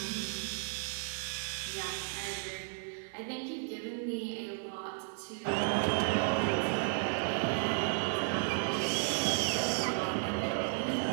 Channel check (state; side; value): silent; left; 55 dB below the other